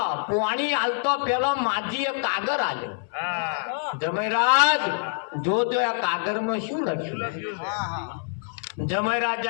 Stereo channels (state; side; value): silent; right; 58 dB below the other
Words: પુવાણી આલતો પેલો માજીએ કાગર આલ્યો જમાઈ રાજ જોજો આ કાગરમાં શું લખ્યું જમાઈ